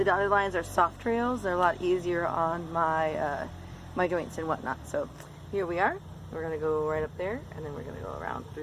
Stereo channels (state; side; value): identical; both; correlation 1.00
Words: dotted lines are soft trails. They're a lot easier on my my joints and whatnot. So here we are. We're going to go right up there, and then we're going to go around